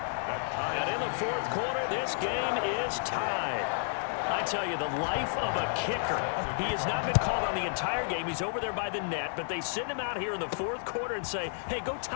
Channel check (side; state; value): right; silent; 57 dB below the other